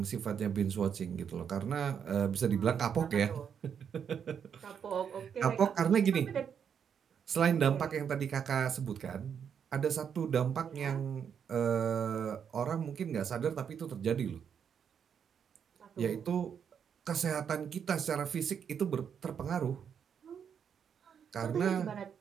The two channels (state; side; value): quieter; left; 7.6 dB